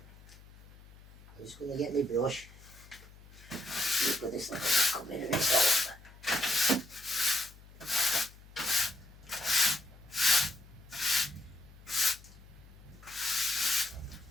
I'm just going to get my brush. Put this little cup in and it's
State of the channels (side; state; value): left; noise; hum, 21 dB below the sound